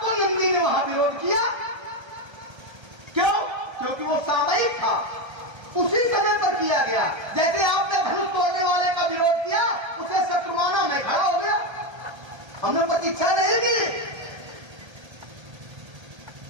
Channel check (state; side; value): late; left; 1.3 ms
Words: तो नंदी ने वहां विरोध किया। क्यों? क्योंकि वो सामयिक था, उसी समय पर किया गया। जैसे आपने धनुष तोड़ने वाले का विरोध किया, उसे शत्रुमाना में खड़ा हो गया, हमने प्रतीक्षा नहीं की।